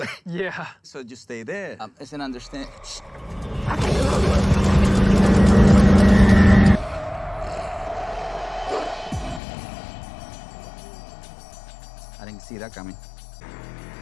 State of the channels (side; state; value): right; drops out; at 9.4 s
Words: Yeah. So just stay there. It's an understand. I didn't see that coming.